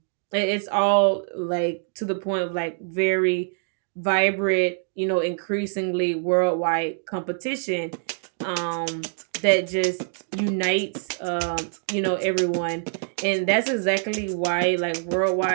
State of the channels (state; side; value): silent; left; digital silence